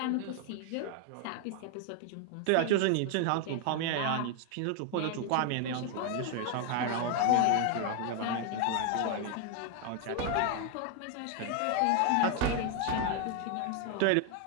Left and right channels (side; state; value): both; different; correlation 0.00